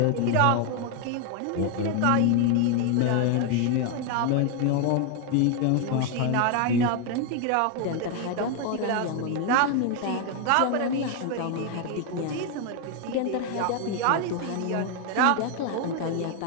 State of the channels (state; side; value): different; both; correlation 0.01